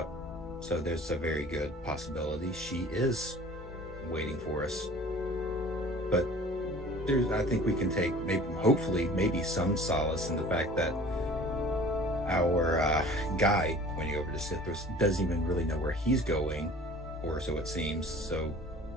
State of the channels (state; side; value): normal; both; correlation 0.46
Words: So there's a very good possibility she is waiting for us. But I think we can take, hopefully, some solace in the fact that our guide pointing over to Sithras doesn't even really know where he's going, or so it seems. So